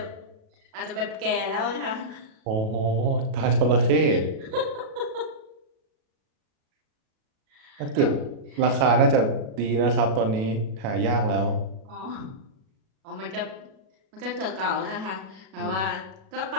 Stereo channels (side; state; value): left; late; 37 ms